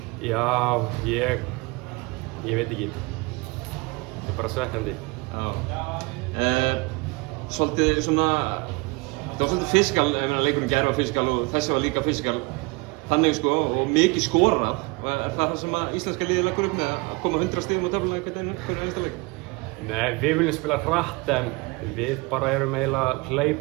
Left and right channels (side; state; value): left; quieter; 26.6 dB